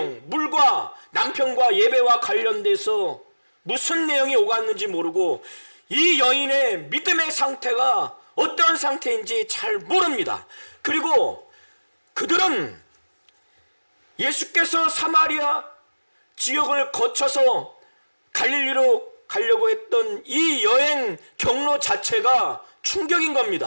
물과 남편과 예배와 관련돼서 무슨 내용이 오갔는지 모르고 이 여인의 믿음의 상태가 어떤 상태인지 잘 모릅니다. 그리고 그들은 예수께서 사마리아 지역을 거쳐서 갈릴리로 가려고 했던 이 여행 경로 자체가 충격인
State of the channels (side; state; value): both; inverted; correlation -1.00